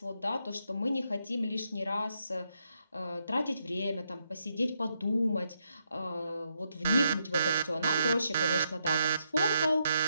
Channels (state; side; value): inverted; both; correlation -0.79